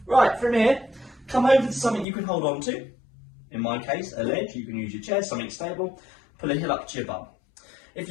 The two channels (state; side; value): drops out; right; at 2.1 s